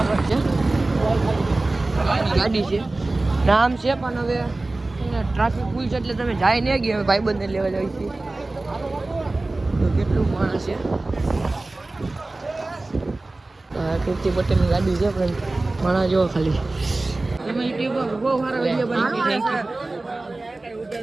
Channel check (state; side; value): quieter; left; 3.0 dB